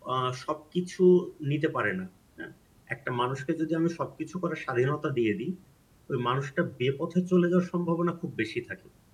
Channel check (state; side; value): identical; both; correlation 1.00